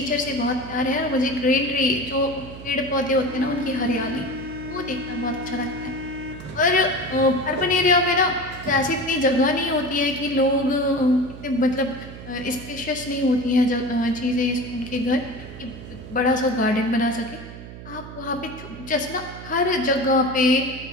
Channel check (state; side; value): noise; right; hum, 13 dB below the sound